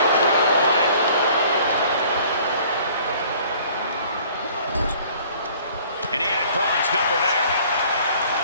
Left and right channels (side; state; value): both; inverted; correlation -0.53